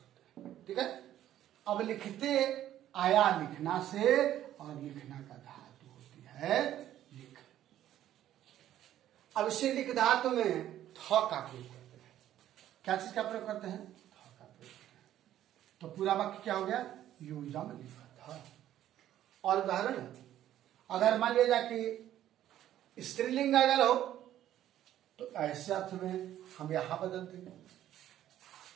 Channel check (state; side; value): quieter; left; 12.2 dB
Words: हैं। ठीक है। अब लिखते आया लिखना से, और लिखना का धातु होती है लिख। अब इसे लिख धातु में थ का प्रयोग करते हैं। क्या चीज का प्रयोग करते हैं? थ का प्रयोग करते हैं। तो पूरा वाक्य क्या हो गया? यूयम लिखत। और उदाहरण, अगर मान लिया जाए कि स्त्रीलिंग अगर हो, तो ऐसे अर्थ में हम यहां बदल देंगे